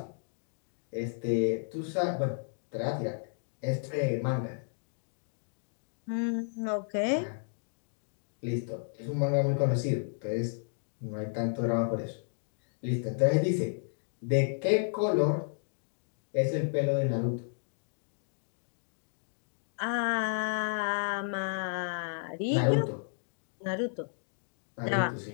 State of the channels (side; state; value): right; silent; digital silence